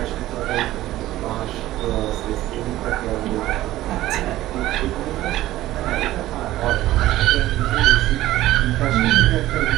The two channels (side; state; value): left; quieter; 15.4 dB